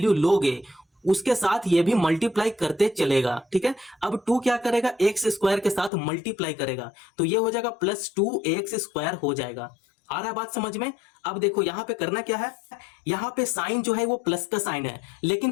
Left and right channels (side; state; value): right; drops out; at 5.9 s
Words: लोगे उसके साथ ये भी मल्टीप्लाई करते चलेगा। ठीक है, अब 2 क्या करेगा? x² के साथ मल्टीप्लाई करेगा, तो ये हो जाएगा प्लस 2x² हो जाएगा। आ रहा है बात समझ में? अब देखो यहां पे करना क्या है, यहां पे साइन जो है वो प्लस का साइन है, लेकिन